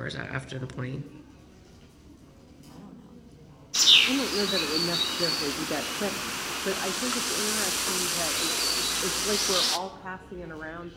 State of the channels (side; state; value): both; identical; correlation 1.00